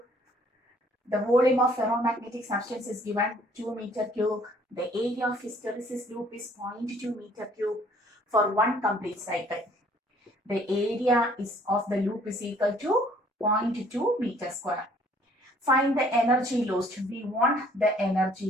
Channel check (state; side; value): normal; both; correlation 0.59